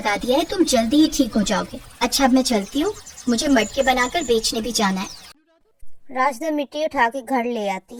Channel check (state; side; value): identical; both; correlation 1.00